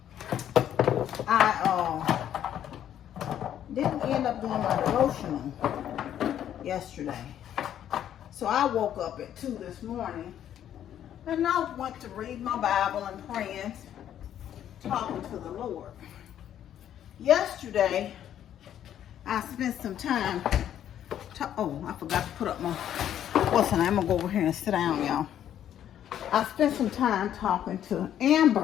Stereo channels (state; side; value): quieter; right; 10.5 dB